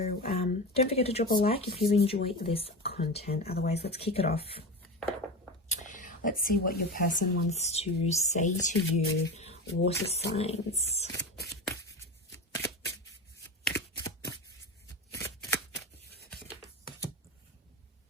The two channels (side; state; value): both; normal; correlation 0.24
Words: don't forget to drop a like if you enjoy this content. Otherwise, let's kick it off. Let's see what your person wants to say to you, water signs.